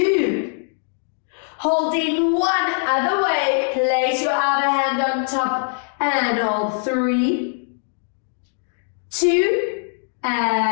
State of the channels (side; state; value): right; silent; 58 dB below the other